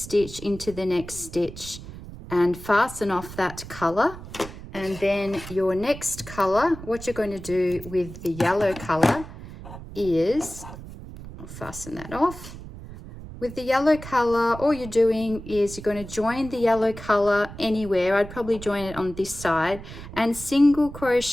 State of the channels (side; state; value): right; noise; rumble, 13 dB below the sound